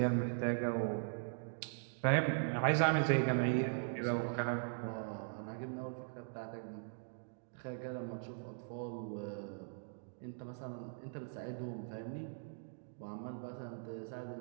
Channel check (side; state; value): left; silent; digital silence